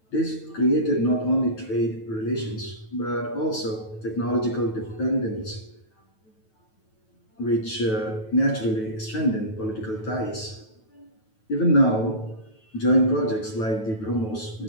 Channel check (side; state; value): right; late; 9.2 ms